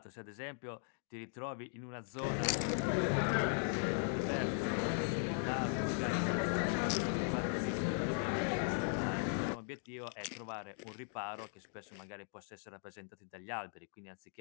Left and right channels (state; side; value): silent; right; 52 dB below the other